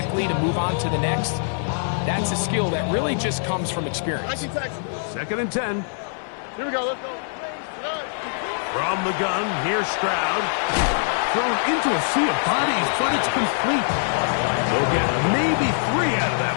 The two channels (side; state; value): right; silent; 62 dB below the other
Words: to move on to the next, that's a skill that really just comes from experience. 2nd and 10. Here we go, let's go. From the gun, here's Stroud. Thrown into a sea of bodies, but it's complete. They'll get maybe 3 out of that